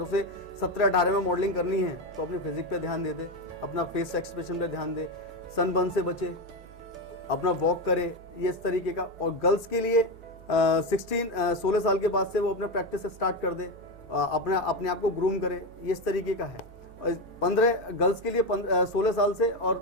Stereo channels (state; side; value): normal; both; correlation 0.14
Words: उसे 17-18 में मॉडलिंग करनी है तो अपनी फिजिक पे ध्यान दे, अपना फेस एक्सप्रेशन पे ध्यान दे, सनबर्न से बचे, अपना वॉक करे, ये इस तरीके का। और गर्ल्स के लिए 16 साल के बाद से वो अपना प्रैक्टिस स्टार्ट कर दे, अपने आप को ग्रूम करे, ये इस तरीके का है। और 15 गर्ल्स के लिए 16 साल से और